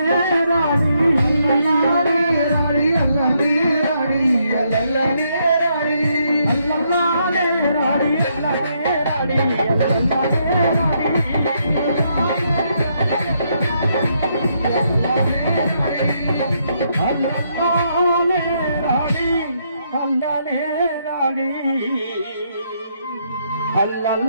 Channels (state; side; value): inverted; both; correlation -0.75